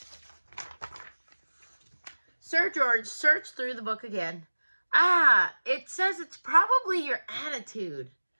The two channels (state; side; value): inverted; both; correlation -1.00